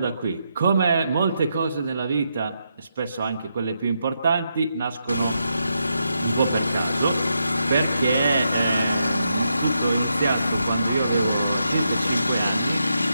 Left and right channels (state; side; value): inverted; both; correlation -0.83